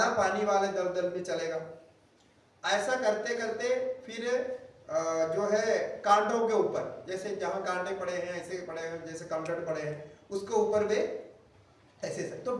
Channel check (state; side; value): identical; both; correlation 1.00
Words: पानी वाले दलदल में चलेगा। ऐसा करते करते फिर जो है कांटों के ऊपर, जैसे जहां कांटे पड़े हैं ऐसे पड़े हैं, जैसे कंकड़ पड़े हैं उसके ऊपर भी ऐसे। तो